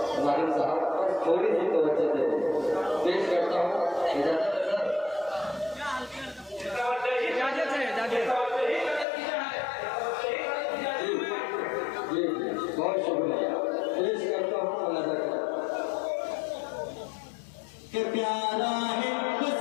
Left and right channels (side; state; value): right; drops out; at 9.1 s